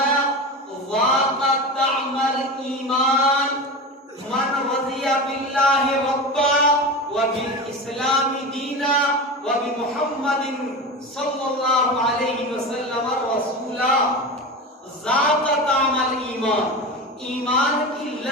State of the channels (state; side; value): normal; both; correlation 0.26